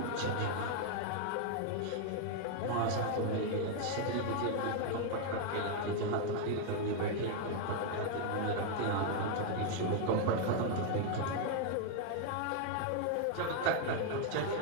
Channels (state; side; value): different; both; correlation 0.00